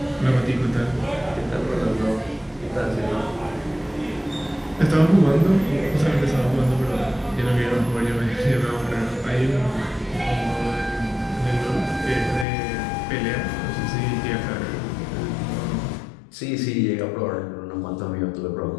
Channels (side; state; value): right; drops out; at 12.5 s